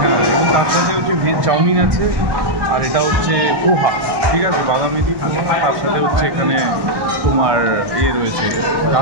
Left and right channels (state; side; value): late; left; 1.1 ms